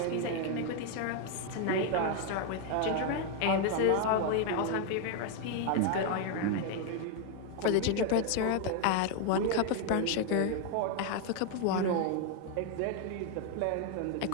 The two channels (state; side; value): different; both; correlation 0.01